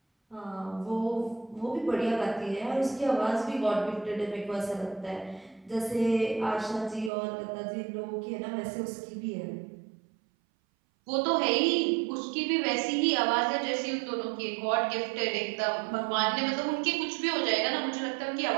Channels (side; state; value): left; drops out; at 7.1 s